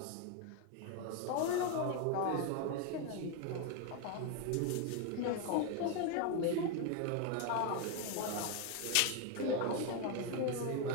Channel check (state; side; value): different; both; correlation 0.01